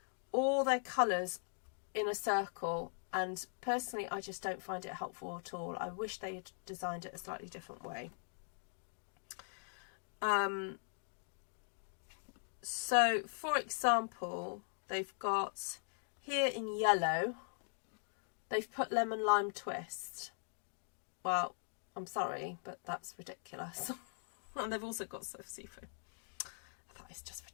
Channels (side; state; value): right; silent; digital silence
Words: all their colours in a circle, and personally I just don't find it helpful at all. I wish they had designed it a slightly different way. So for example, they've got here in yellow, they've put lemon lime twist. Well, I'm sorry, but that's ridiculous. And they've also got soft seafood. I thought it's just